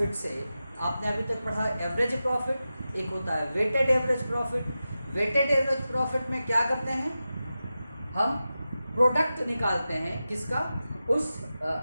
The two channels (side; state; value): both; inverted; correlation -0.93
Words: से आपने अभी तक पढ़ा average profit, एक होता है weighted average profit. Weighted average profit में क्या करते हैं, हम प्रोडक्ट निकालते हैं किसका, उस